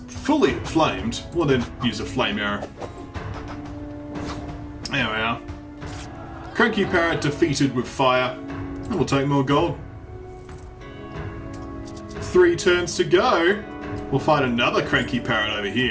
fully inflamed, we'll then use a Flame Arrow. There we are. Cranky parrot defeated with fire. And we'll take more gold. 3 turns to go. We'll find another cranky parrot over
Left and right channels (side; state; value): both; identical; correlation 1.00